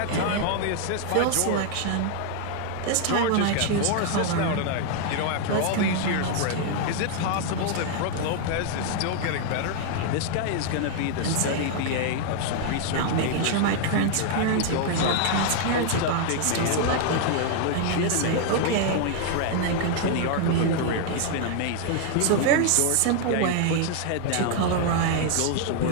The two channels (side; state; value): both; different; correlation 0.00